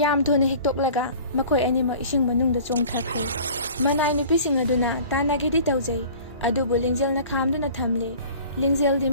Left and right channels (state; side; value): inverted; both; correlation -0.45